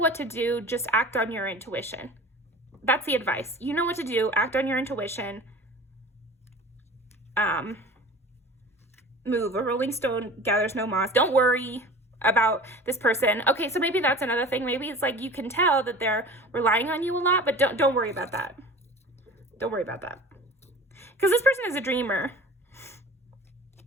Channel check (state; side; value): normal; both; correlation 0.40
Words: to do, just act on your intuition. That's the advice. You know what to do, act on your intuition. Move. A rolling stone gathers no moss. Don't worry. about this person. Okay, so maybe that's another thing. Maybe it's like you can tell that they're relying on you a lot, but don't worry about that. Don't worry about that. Because this person is a dreamer.